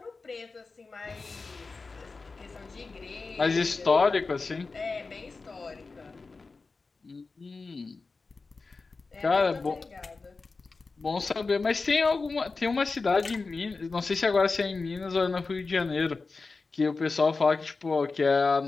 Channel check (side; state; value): right; quieter; 4.1 dB